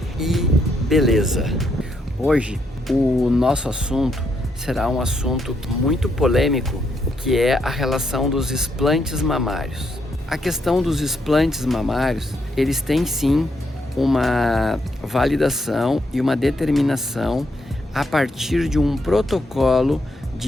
e beleza. Hoje, o nosso assunto será um assunto muito polêmico, que é a relação dos implantes mamários. A questão dos implantes mamários, eles têm sim uma validação e uma determinação a partir de um protocolo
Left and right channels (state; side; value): normal; both; correlation 0.77